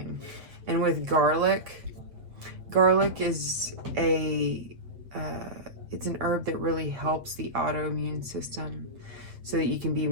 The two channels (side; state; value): left; late; 7.9 ms